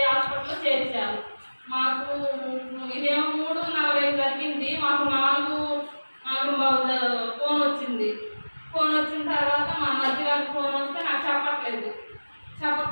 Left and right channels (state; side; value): inverted; both; correlation -1.00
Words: హాస్పిటల్లో చేర్చారు. మాకు ఇదేమో 3:40 జరిగింది. మాకు 4:45 ఫోన్ వచ్చింది. ఫోన్ వచ్చిన తర్వాత మా మధ్య గారికి ఫోన్ వస్తే నాకు